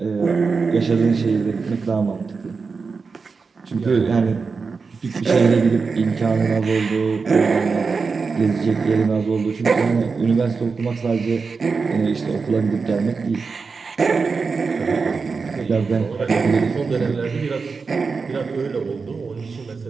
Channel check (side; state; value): left; quieter; 4.8 dB